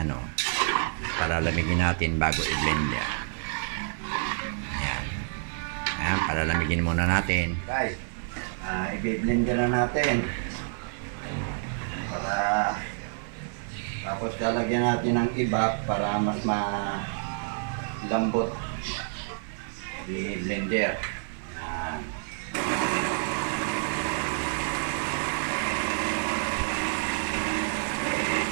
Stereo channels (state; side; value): silent; left; digital silence